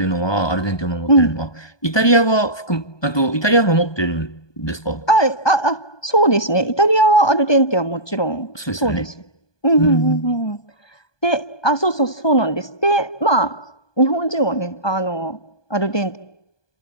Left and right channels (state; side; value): late; right; 1.2 ms